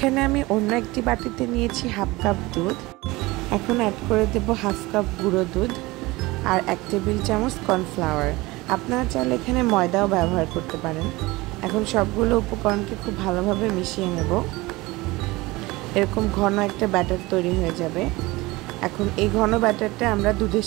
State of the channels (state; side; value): quieter; left; 21.3 dB